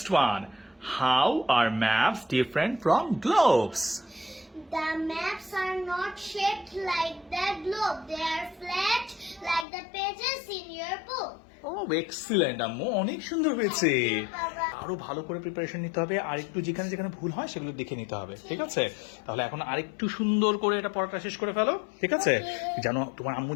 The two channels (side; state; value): right; drops out; at 9.7 s